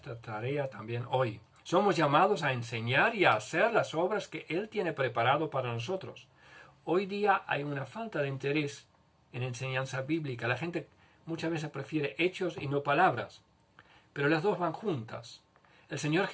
tarea también hoy. Somos llamados a enseñar y a hacer las obras que Él tiene preparado para nosotros. Hoy día hay una falta de interés en enseñanza bíblica. La gente muchas veces prefiere hechos y no palabras, pero las dos van juntas. El Señor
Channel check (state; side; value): identical; both; correlation 1.00